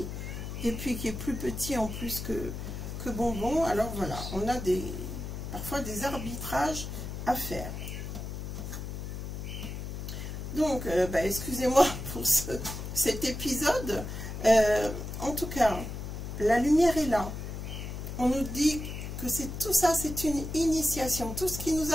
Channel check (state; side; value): noise; left; hum, 7 dB below the sound